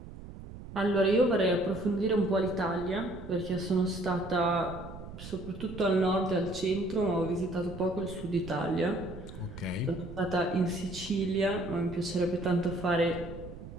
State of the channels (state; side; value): noise; right; rumble, 13 dB below the sound